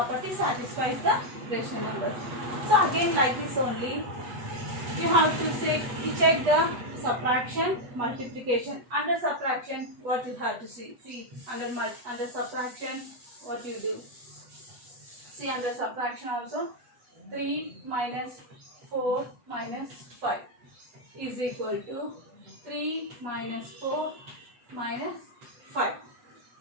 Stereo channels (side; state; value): left; late; 8.3 ms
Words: satisfies the rational numbers. So again like this only, you have to check the subtraction, multiplication. Under subtraction, what you have to see under subtraction, what you do? See under subtraction also, 3 minus 4 minus 5 is equal to 3 minus 4 minus 5.